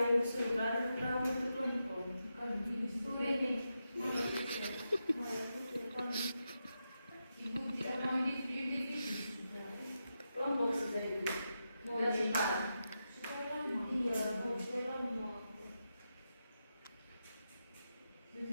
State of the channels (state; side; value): inverted; both; correlation -0.87